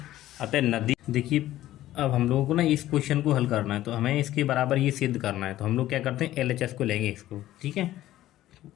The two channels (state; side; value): quieter; right; 14.3 dB